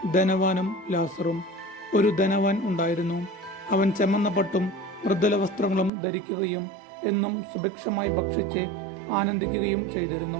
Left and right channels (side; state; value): left; drops out; at 5.9 s